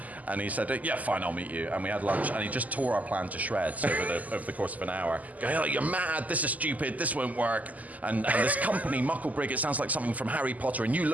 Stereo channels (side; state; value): left; late; 0.077 ms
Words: And he said, "Yeah, fine, I'll meet you." And we had lunch, and he just tore our plan to shreds over the course of an hour. Going, "Oh, you're mad! This is stupid! This won't work!" And this company, Mucklebrig, it sounds like something from Harry Potter, and you